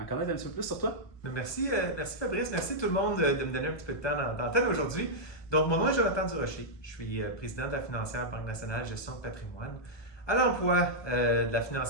connaître un petit peu plus sur toi. Merci, merci Fabrice, merci tout le monde de me donner un petit peu de temps d'antenne aujourd'hui. Donc, mon nom est Jonathan Durocher, je suis président de la financière Banque nationale gestion de patrimoine, à l'emploi de la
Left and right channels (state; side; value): late; right; 1.2 ms